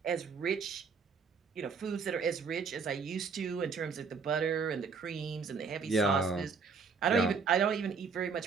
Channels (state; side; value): quieter; left; 5.3 dB